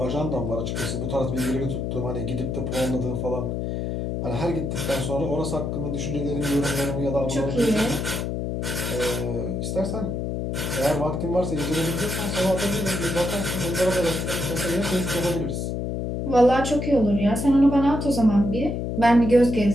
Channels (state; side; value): noise; left; hum, 2 dB below the sound